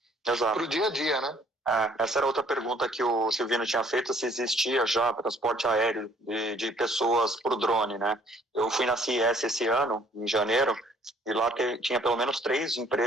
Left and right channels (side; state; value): both; normal; correlation 0.60